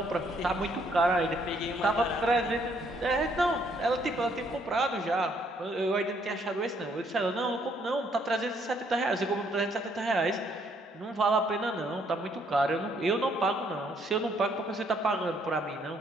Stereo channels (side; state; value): both; normal; correlation 0.68